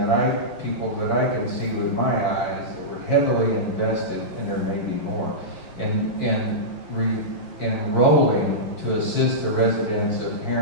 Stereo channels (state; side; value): late; right; 6.3 ms